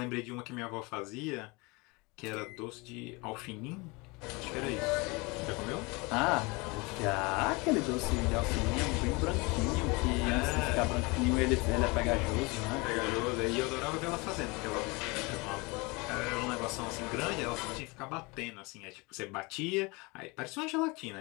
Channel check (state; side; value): quieter; right; 26.5 dB